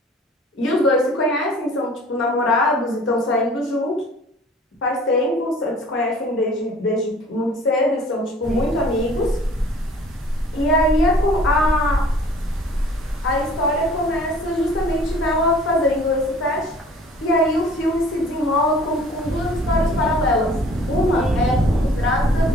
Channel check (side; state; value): both; normal; correlation 0.50